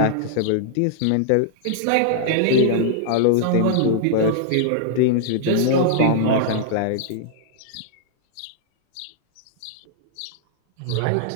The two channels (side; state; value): both; different; correlation -0.01